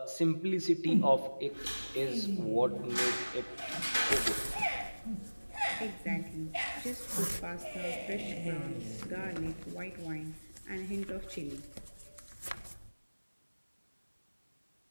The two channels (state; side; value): inverted; both; correlation -1.00